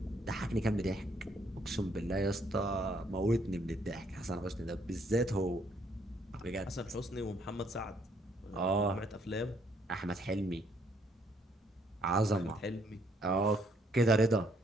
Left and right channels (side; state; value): both; normal; correlation 0.68